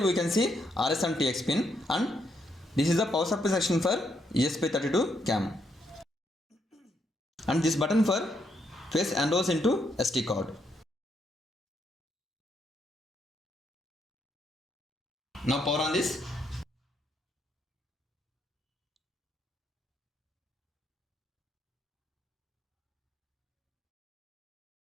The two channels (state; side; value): normal; both; correlation 0.76